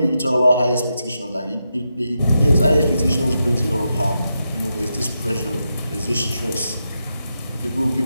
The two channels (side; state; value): both; inverted; correlation -0.86